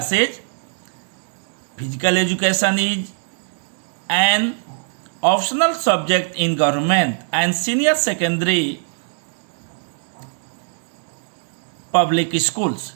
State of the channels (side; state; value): left; silent; 65 dB below the other